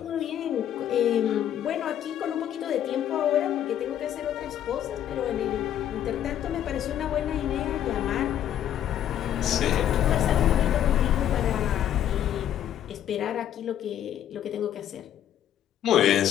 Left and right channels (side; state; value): right; quieter; 10.7 dB